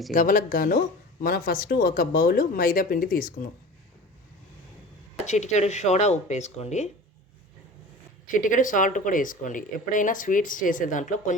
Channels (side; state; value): both; normal; correlation 0.37